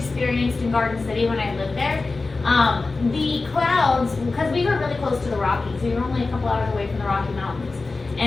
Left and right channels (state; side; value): quieter; right; 3.7 dB